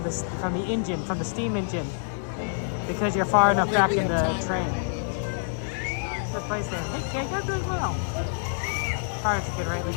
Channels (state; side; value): silent; right; digital silence